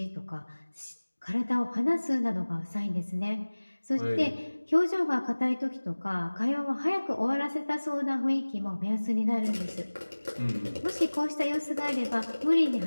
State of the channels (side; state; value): both; inverted; correlation -1.00